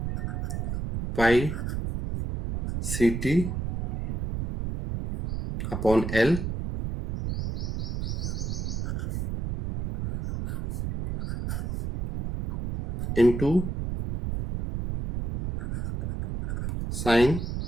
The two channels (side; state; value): right; noise; rumble, 3 dB below the sound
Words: pi Ct upon L into sine